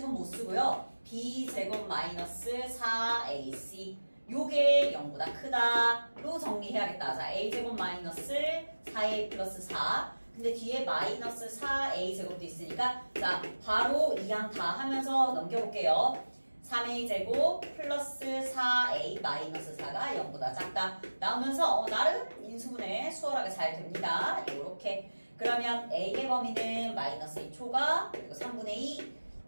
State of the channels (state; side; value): inverted; both; correlation -1.00